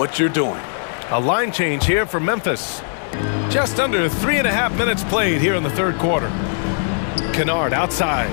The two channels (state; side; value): silent; right; digital silence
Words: you're doing. A line change here for Memphis. Just under 3.5 minutes played here in the third quarter. Kennard outside.